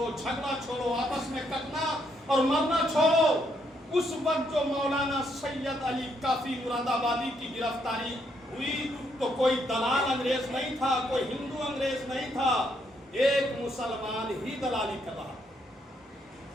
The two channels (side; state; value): both; normal; correlation 0.74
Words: جھگڑا چھوڑو، آپس میں کٹنا اور مرنا چھوڑو۔ اس وقت جو مولانا سید علی کافی مراد آبادی کی گرفتاری ہوئی تو کوئی دلال انگریز نہیں تھا، کوئی ہندو انگریز نہیں تھا، ایک مسلمان ہی دلالی کر رہا،